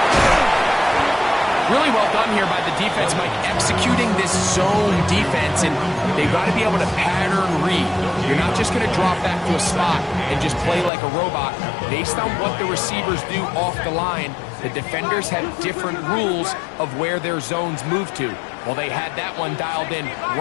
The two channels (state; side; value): drops out; right; at 10.9 s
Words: Really well done here by the defense, Mike, executing this zone defense, and they've got to be able to pattern read. You're not just going to drop back to a spot and just play like a robot. Based on what the receivers do off the line, the defenders have different rules of where their zones move to. Well, they had that one dialed in